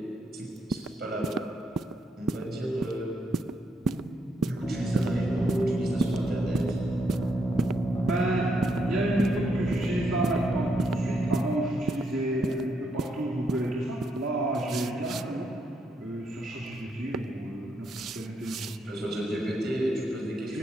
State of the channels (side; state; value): both; normal; correlation 0.77